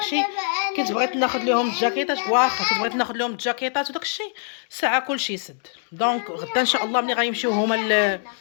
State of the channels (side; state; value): right; silent; digital silence